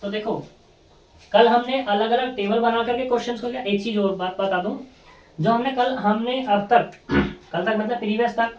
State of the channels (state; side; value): identical; both; correlation 1.00